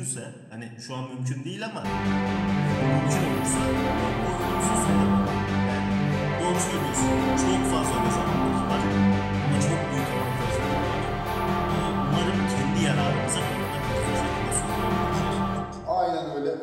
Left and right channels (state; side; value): identical; both; correlation 1.00